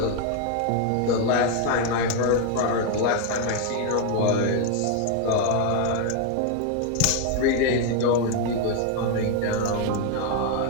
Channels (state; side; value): different; both; correlation 0.01